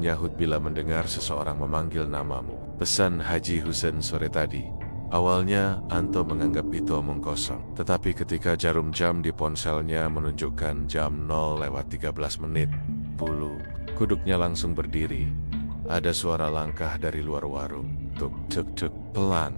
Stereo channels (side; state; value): both; inverted; correlation -1.00